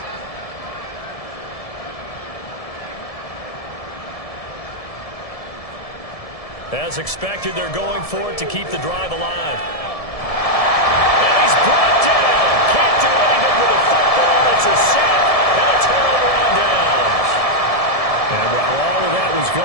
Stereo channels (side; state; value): right; late; 1.7 ms